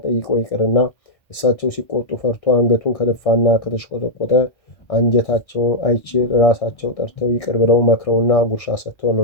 ጠይቆ ይቅርና እሳቸው ሲቆጡ ፈርቶ አንገቱን ከደፋና ከተሽቆጠቆጠ አንጀታቸው አይችል ራሳቸው ጠርተው ይቅር ብለው መክረውና ጉርሻ ሰጥተው ነው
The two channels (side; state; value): right; late; 1.6 ms